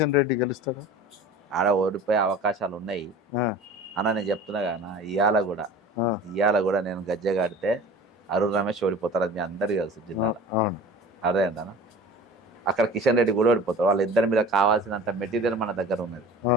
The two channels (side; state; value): both; normal; correlation 0.39